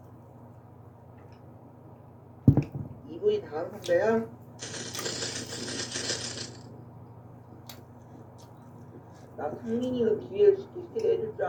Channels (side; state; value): both; identical; correlation 1.00